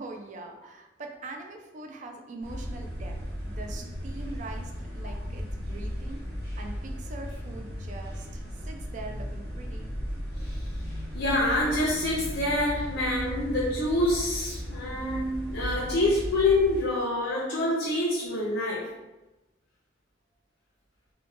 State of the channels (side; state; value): both; normal; correlation 0.37